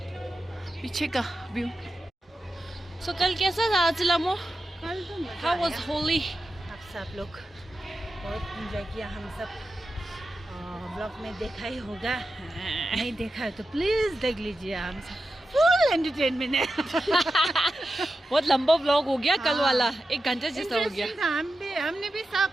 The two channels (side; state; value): both; normal; correlation 0.91